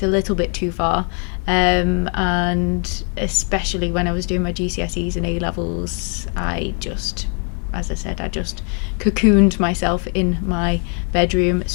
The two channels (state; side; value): quieter; right; 39.0 dB